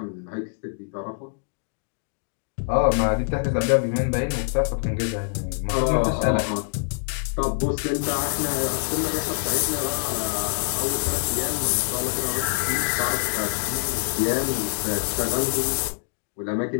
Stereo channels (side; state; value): right; silent; digital silence